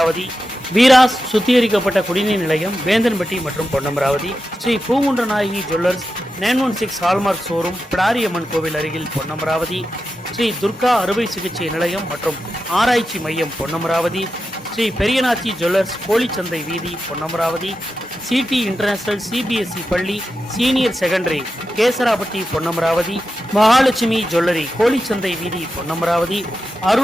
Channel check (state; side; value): normal; both; correlation 0.90